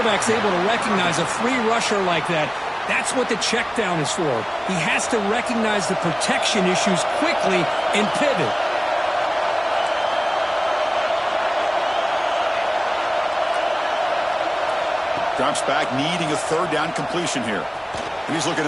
able to recognize a free rusher like that, that's what the check down is for. He has to recognize the protection issues quickly and pivot. Drops back, needing a third down completion here. He's looking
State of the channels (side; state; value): both; identical; correlation 1.00